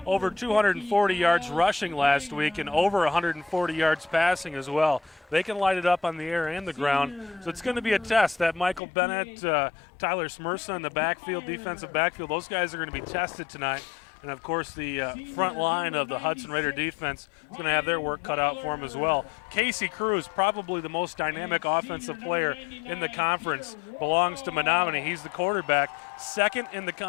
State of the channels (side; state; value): right; drops out; at 8.8 s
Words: over 240 yards rushing last week and over 140 yards passing as well. They can light it up on the air and the ground. So it's going to be a test. That Michael Bennett, Tyler Smirsa in the backfield, defensive backfield, those guys are going to be tested tonight. And, of course, the front line of the Hudson Raider defense is going to have their work cut out for them as well. Casey Cruz, probably the most dynamic offensive player in the conference, belongs to Menominee. He's the quarterback, second in the